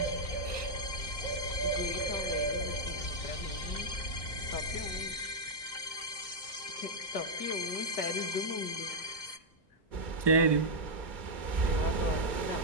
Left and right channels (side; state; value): right; late; 2.1 ms